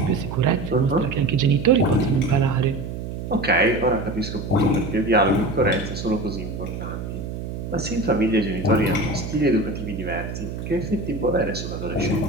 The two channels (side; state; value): right; noise; hum, 7 dB below the sound